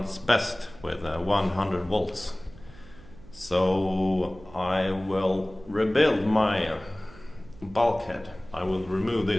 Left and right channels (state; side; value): noise; right; hum, 21 dB below the sound